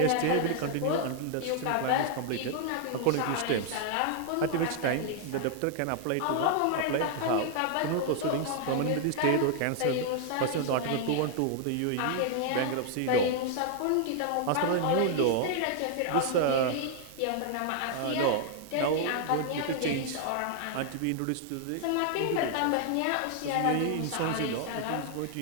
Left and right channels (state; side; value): different; both; correlation 0.00